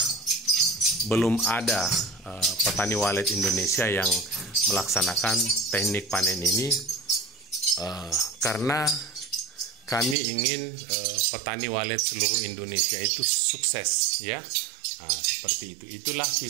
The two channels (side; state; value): left; drops out; at 10.2 s